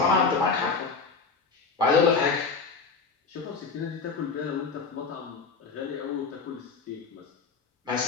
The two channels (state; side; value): quieter; right; 4.7 dB